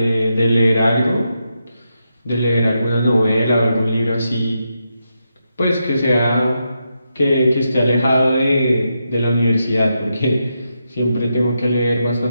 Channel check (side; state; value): both; inverted; correlation -0.84